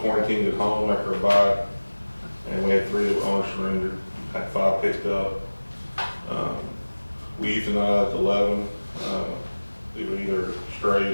quarantined at home after a bite, and we had 3 that were owner surrendered. Had 5 picked up. We euthanized 11. They were either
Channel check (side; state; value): both; inverted; correlation -1.00